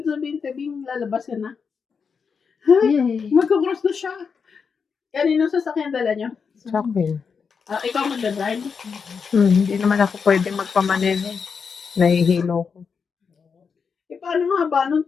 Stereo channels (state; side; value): quieter; right; 5.8 dB